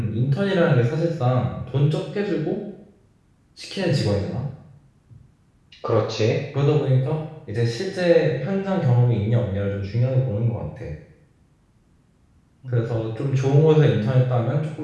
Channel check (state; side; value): identical; both; correlation 1.00